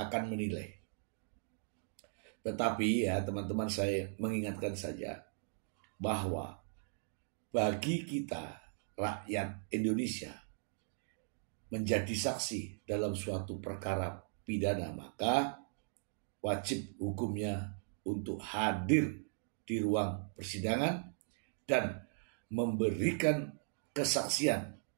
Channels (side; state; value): left; silent; digital silence